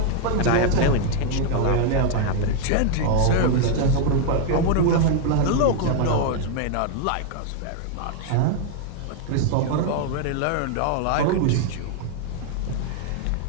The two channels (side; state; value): both; different; correlation 0.00